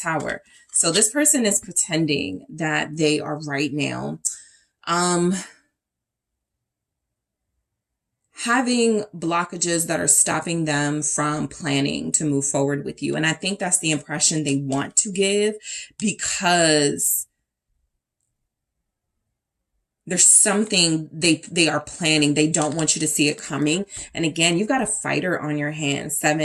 So this person is pretending that they are right now, having blockages that are stopping them from planning to move forward with you. And I think that's the impression they want to give, because There's something they are planning. They don't want you to see it coming. And again, you've got a fighter on your hands.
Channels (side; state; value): both; identical; correlation 1.00